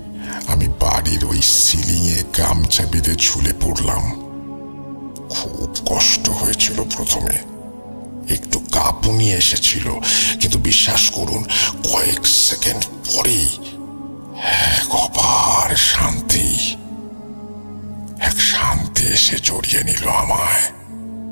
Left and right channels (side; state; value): both; inverted; correlation -1.00